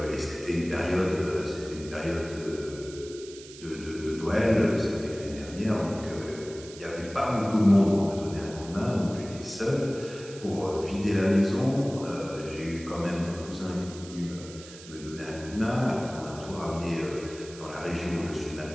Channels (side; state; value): right; noise; hiss, 17 dB below the sound